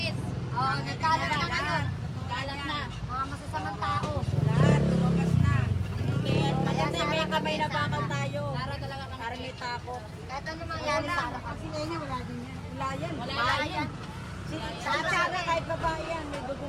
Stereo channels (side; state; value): both; identical; correlation 1.00